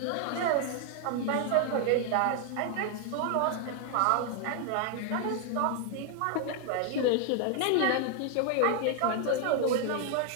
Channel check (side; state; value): both; different; correlation 0.00